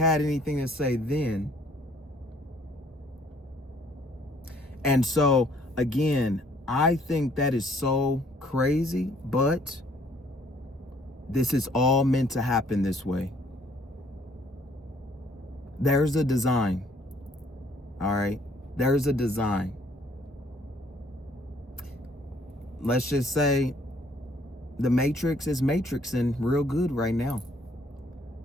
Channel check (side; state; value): both; normal; correlation 0.62